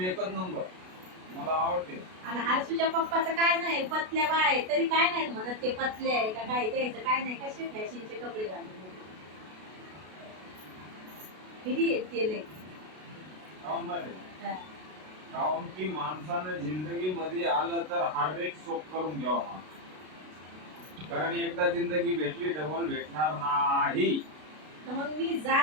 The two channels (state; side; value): late; left; 33 ms